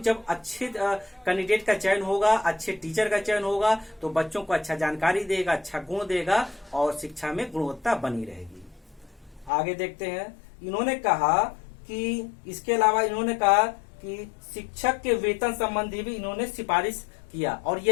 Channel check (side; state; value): right; drops out; at 9.5 s